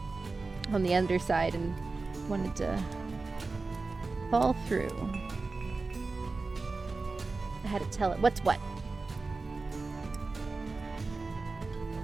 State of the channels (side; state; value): left; quieter; 3.8 dB